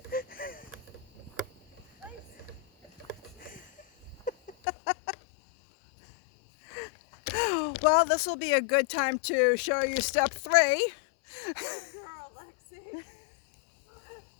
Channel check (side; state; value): right; drops out; at 4.5 s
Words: Well, this will be a good time to show you step 3. Good girl, Lexi.